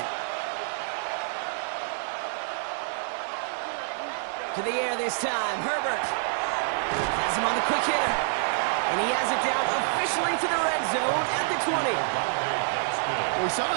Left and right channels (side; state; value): left; silent; digital silence